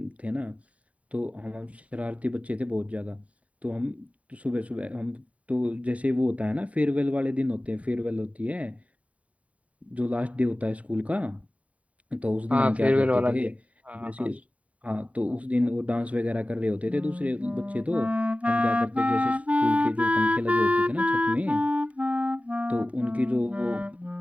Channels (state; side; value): late; left; 0.067 ms